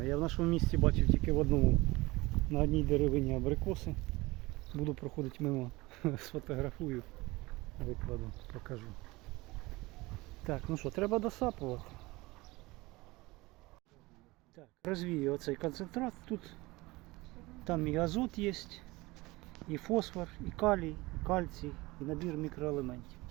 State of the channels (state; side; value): quieter; left; 21.6 dB